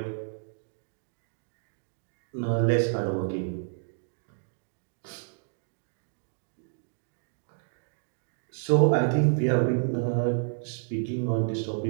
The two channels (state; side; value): silent; left; digital silence